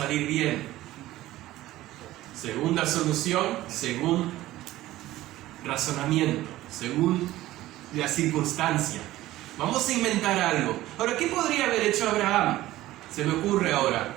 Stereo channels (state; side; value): quieter; left; 15.9 dB